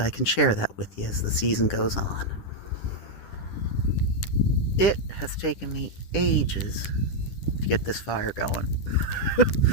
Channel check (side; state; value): right; late; 10 ms